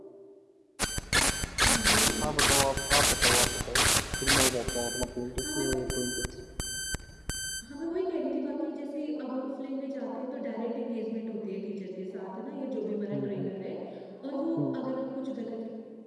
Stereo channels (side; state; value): both; identical; correlation 1.00